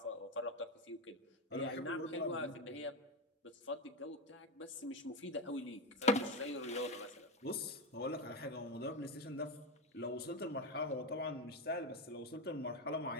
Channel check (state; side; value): normal; both; correlation 0.13